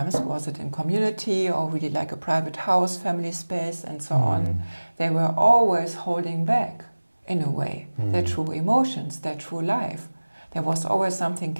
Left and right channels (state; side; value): inverted; both; correlation -1.00